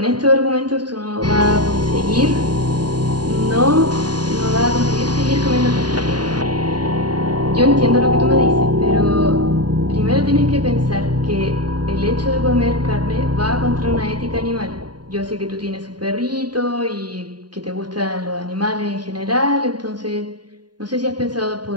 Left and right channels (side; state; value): left; late; 0.70 ms